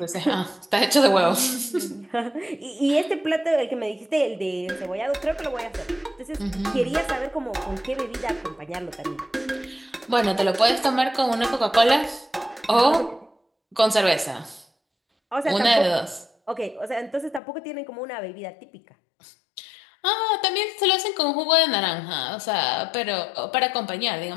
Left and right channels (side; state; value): right; drops out; at 17.4 s